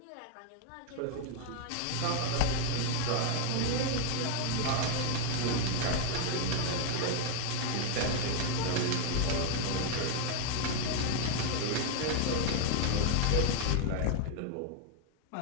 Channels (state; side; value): different; both; correlation 0.00